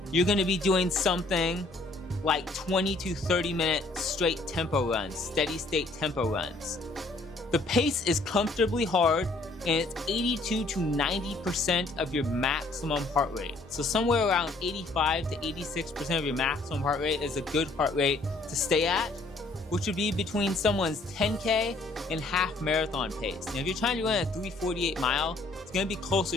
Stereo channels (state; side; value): quieter; right; 3.2 dB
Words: you're going to be doing something like 20 to 30 minute straight tempo runs, steady state tempo runs. The pace is comfortably hard, and it's 82 to 90% of your maximum heart rate. So somewhere around 85 to 86% of your maximum heart rate is a good heart rate to stay at, which would be between someone's 10K and half marathon pace. Now, if you're trying to run a 3:48 mile, it's going to be